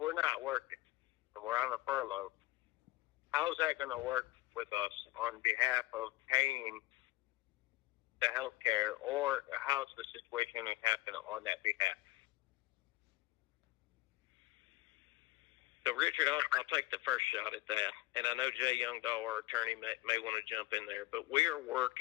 not working and we're on a furlough, how's that going to work with us on behalf of paying the healthcare, or how's the situation going to happen on that behalf? So, Richard, I'll take the first shot at that. And I know Jay Youngdahl, our attorney, may want to jump in there. But we are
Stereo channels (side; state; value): right; quieter; 19.0 dB